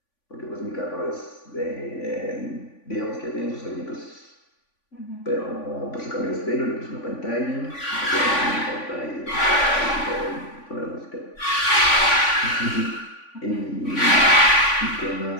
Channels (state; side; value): late; right; 3.5 ms